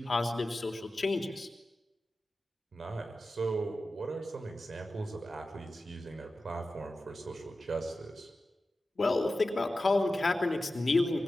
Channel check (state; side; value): normal; both; correlation 0.93